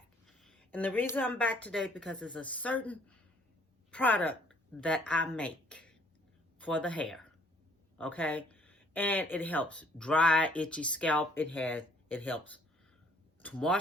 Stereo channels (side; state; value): both; normal; correlation 0.61